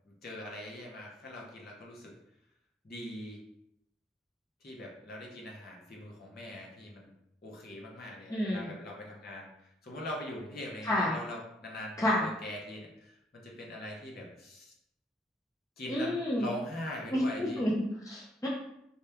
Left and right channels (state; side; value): normal; both; correlation 0.67